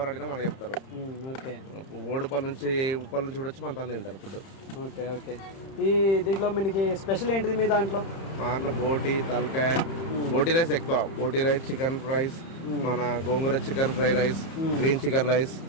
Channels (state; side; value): late; right; 31 ms